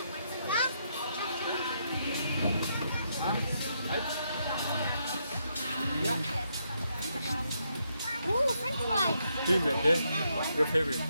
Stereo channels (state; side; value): inverted; both; correlation -0.78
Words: Oh, French fries. Тийм ээ те. Your favorite.